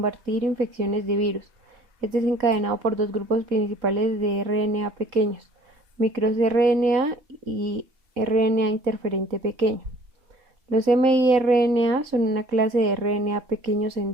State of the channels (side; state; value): left; late; 3.8 ms